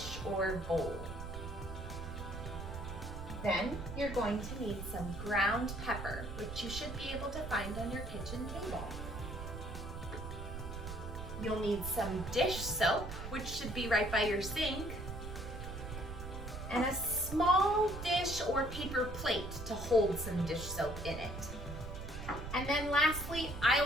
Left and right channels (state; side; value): noise; right; rumble, 7 dB below the sound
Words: or bowl. Then you're going to need some ground pepper, which you should be able to find on your kitchen table. You'll need some dish soap, which should be right by your sink, and a small dish or paper plate to hold some dish soap in it. And then lastly, I